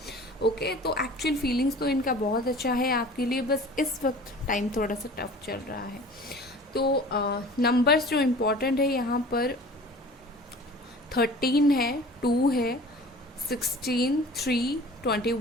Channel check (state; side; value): normal; both; correlation 0.44